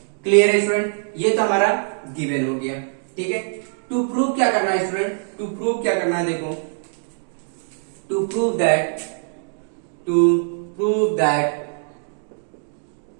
क्लियर है स्टूडेंट, ये तो हमारा गिवन हो गया। ठीक है, टू प्रूव क्या करना है स्टूडेंट, टू प्रूव क्या करना है, देखो to prove that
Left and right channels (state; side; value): silent; left; digital silence